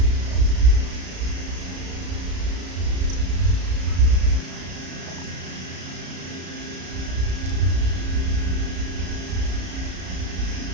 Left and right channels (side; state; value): left; late; 33 ms